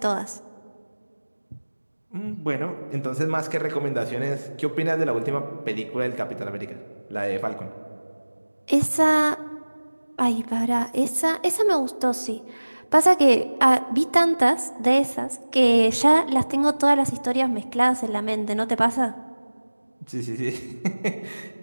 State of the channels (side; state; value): both; inverted; correlation -1.00